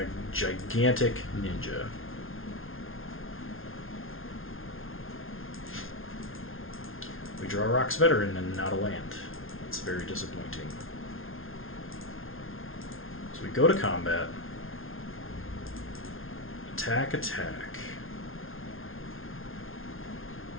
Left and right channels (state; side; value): late; right; 0.60 ms